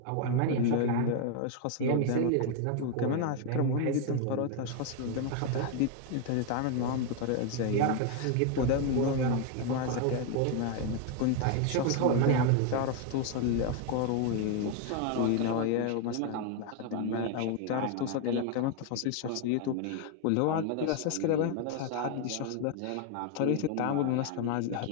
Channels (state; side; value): different; both; correlation 0.01